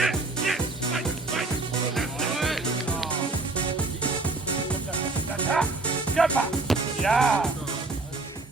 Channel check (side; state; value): left; quieter; 3.3 dB